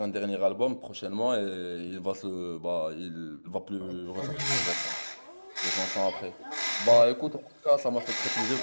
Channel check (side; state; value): both; inverted; correlation -1.00